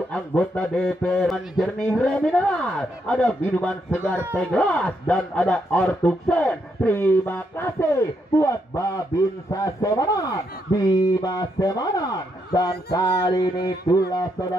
anggota DPR. Jernih Remineral, ada minuman segar teh gelas dan ada Ortuksen. Terima kasih buat Babinsa Semanan, Bima Semanan, dan kali ini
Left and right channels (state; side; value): normal; both; correlation 0.78